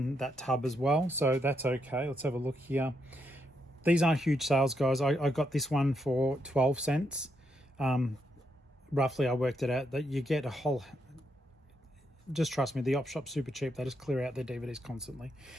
that tub as well. So that's okay. Let's have a look here. These aren't huge sales, guys. I got this one for 12 cents. Roughly, I worked it out that you get a whole... Just trust me, the op shop's super cheap. They just clear out their DVDs constantly.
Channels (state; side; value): normal; both; correlation 0.79